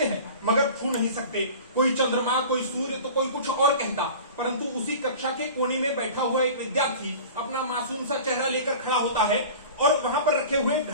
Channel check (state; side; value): inverted; both; correlation -0.38